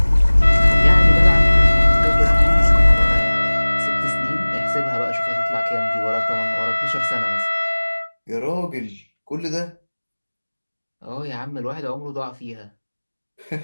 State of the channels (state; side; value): inverted; both; correlation -1.00